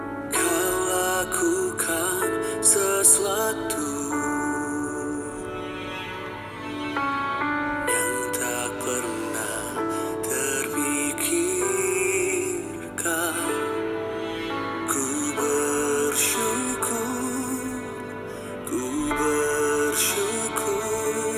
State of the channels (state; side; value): identical; both; correlation 1.00